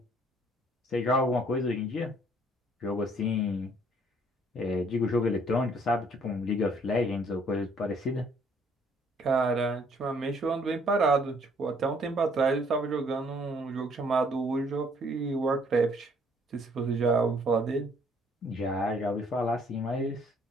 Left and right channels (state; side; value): normal; both; correlation 0.63